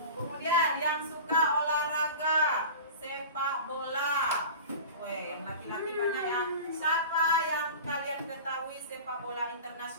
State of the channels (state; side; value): inverted; both; correlation -0.35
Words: Kemudian yang suka olahraga sepak bola. Weh, yang laki-laki banyak ya. Siapa yang kalian ketahui sepak bola